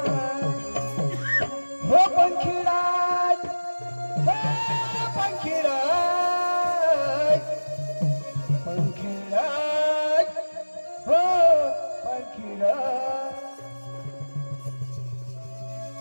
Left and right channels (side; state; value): both; inverted; correlation -1.00